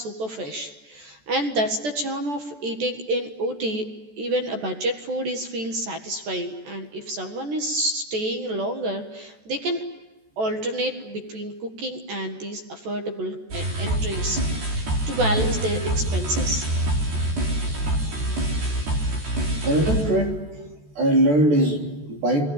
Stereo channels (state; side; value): late; left; 14 ms